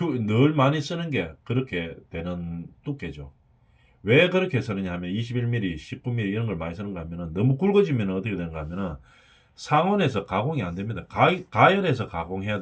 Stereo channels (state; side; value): identical; both; correlation 1.00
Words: 많이 쓰는 게 그렇게 되는 두께죠. 왜 그렇게 쓰느냐 하면 21mm, 19mm 이런 걸 많이 쓰는가 하면은 너무 굵어지면 어떻게 되는가 하면은 상온에서 가공이 안 됩니다. 가열해서 가공해야